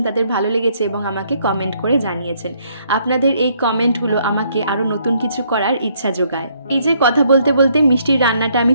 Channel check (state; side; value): inverted; both; correlation -0.69